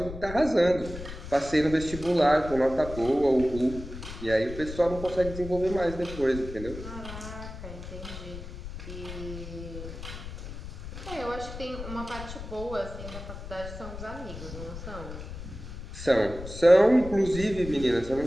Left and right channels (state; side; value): noise; left; rumble, 10 dB below the sound